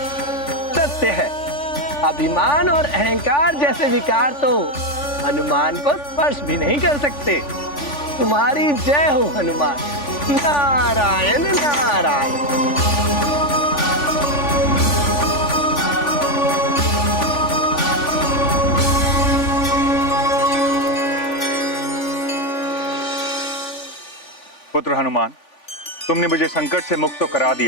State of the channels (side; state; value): right; late; 3.5 ms